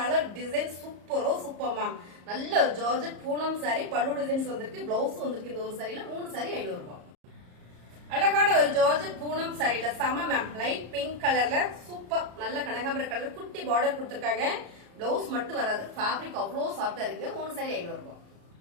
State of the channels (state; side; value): late; left; 34 ms